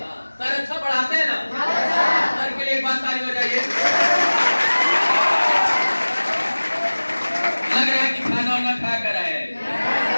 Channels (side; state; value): both; inverted; correlation -1.00